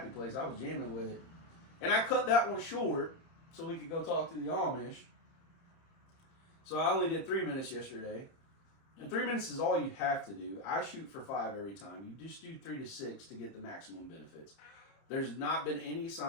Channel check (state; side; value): late; right; 30 ms